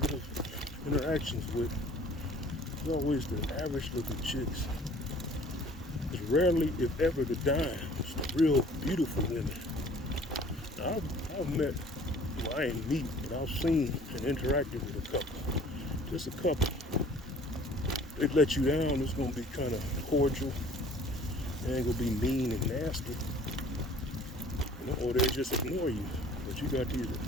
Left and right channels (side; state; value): both; normal; correlation 0.52